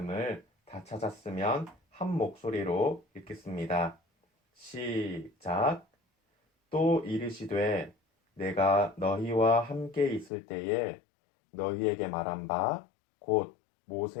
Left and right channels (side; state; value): right; drops out; at 10.3 s